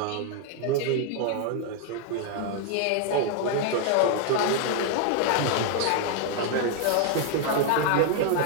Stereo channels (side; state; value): both; different; correlation 0.00